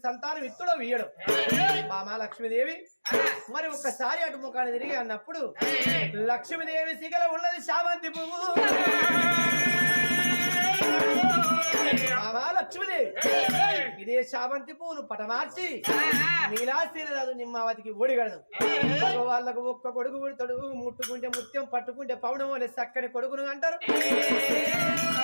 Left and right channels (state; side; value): inverted; both; correlation -1.00